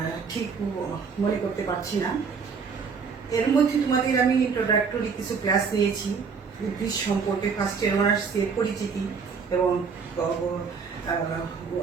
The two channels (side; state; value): left; quieter; 5.6 dB